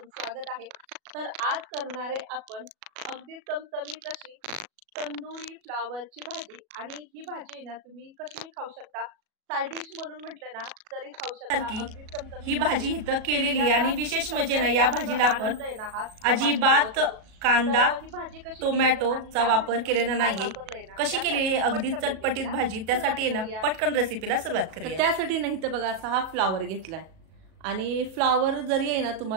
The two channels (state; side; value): late; left; 37 ms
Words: स्वागत आहे। तर आज करणारे आपण अगदी चमचमीत अशी तंदुरी फ्लावरची भाजी। आणि ही भाजी ना तुम्ही कशी खाऊ शकता, साइड डिश म्हणून म्हटलं ना तरी खाऊ शकता। अगदी चमचमीत ही भाजी इथं केलेली आणि विशेष म्हणजे ना या भाजीला आपण अजिबात कांदा टोमॅटोचा वापर केलेला नाहीये। कशी केलेली अगदी चटपटीत भाजी, त्यासाठी ना पटकन रेसिपीला सुरुवात करूया। त्यासाठी नाही तर बघा असा हा फ्लावर घेतलाय आणि फ्लावर जरी आहे ना